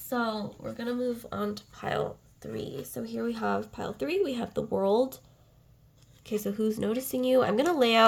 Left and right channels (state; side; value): identical; both; correlation 1.00